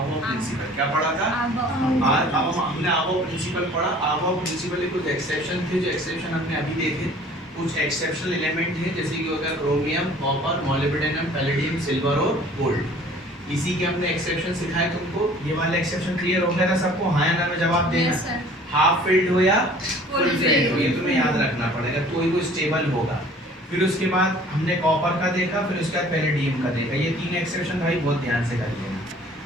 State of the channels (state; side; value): normal; both; correlation 0.51